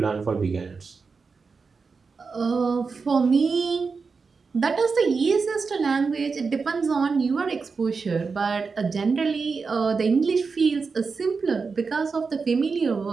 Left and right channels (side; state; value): left; quieter; 4.8 dB